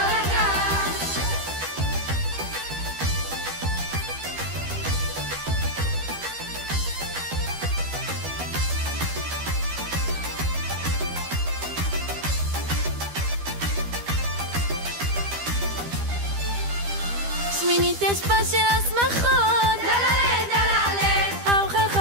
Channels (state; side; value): late; left; 12 ms